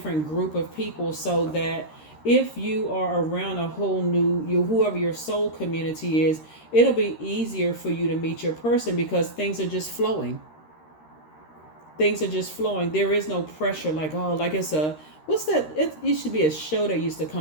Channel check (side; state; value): right; late; 13 ms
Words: group of people so that if you are around a whole new, whoever your soul community is, it'll be easier for you to meet your person because things are just flowing. Things are just flowing. There is no pressure like, oh, like it's a, what's that? It used to be a show that used to